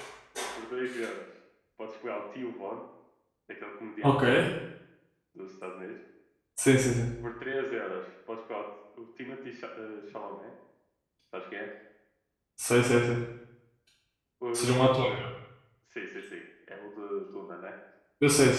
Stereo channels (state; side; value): identical; both; correlation 1.00